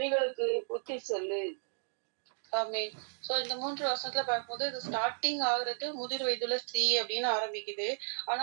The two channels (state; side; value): silent; left; digital silence